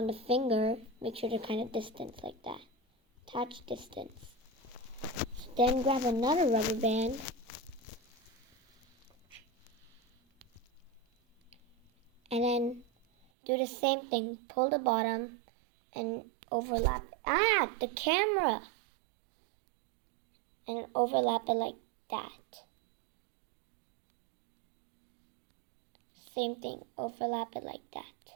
the finger, make sure they're kind of distant like that. Attached distance. Then grab another rubber band and then do the same thing. Pull the bottom and overlap. The camera! And overlap it like that. Same thing. Overlap it like that.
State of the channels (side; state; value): left; drops out; at 13.2 s